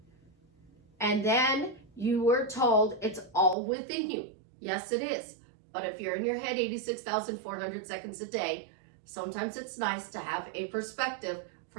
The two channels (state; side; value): drops out; left; at 3.6 s